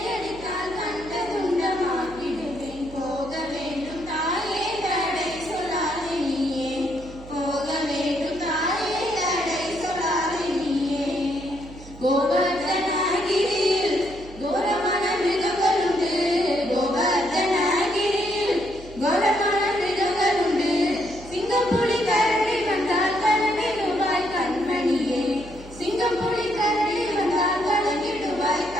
அடித்தால் கண்டதுண்டமாக்கிடுவேன். போக வேண்டும் தாயே தடை சொல்லாதே நீயே. போக வேண்டும் தாயே தடை சொல்லாதே நீயே. கோவர்தனகிரியில் கோரமான மிருகங்களுண்டு. கோவர்தனகிரியில் கோரமான மிருகங்களுண்டு. சிங்கம் புலி கரடி வந்தால் கலங்கிடுவாய் கண்மணியே. சிங்கம் புலி கரடி வந்தால் கலங்கிடுவாய்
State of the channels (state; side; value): noise; right; hum, 17 dB below the sound